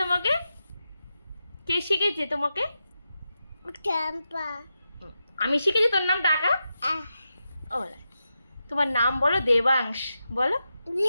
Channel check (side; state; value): both; inverted; correlation -0.89